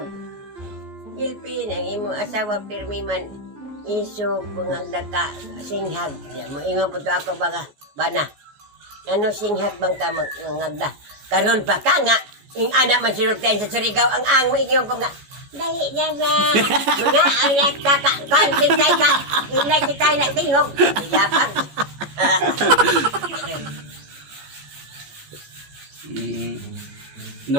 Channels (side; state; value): left; late; 14 ms